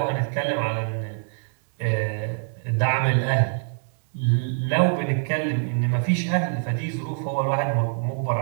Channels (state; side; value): silent; left; digital silence